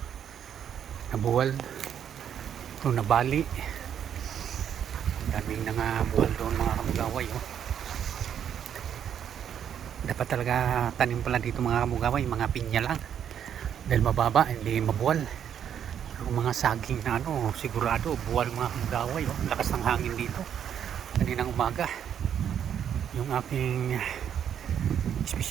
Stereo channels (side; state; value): left; quieter; 9.0 dB